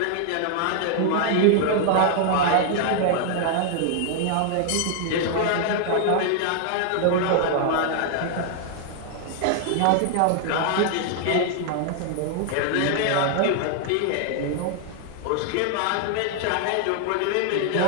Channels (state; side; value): different; both; correlation 0.00